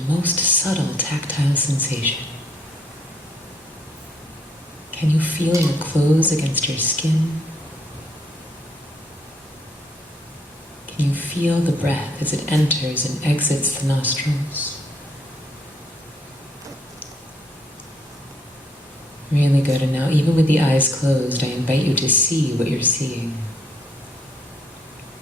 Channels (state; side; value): normal; both; correlation 0.68